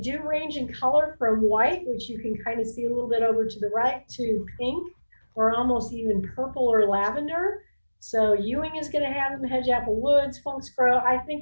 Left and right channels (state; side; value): inverted; both; correlation -1.00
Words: do range in color from white, which you can kind of see a little bit over to the right, to pink, or almost even purple or lavender. So Ewing is going to have them, Hedge Apple Woods, Funk's Grove. I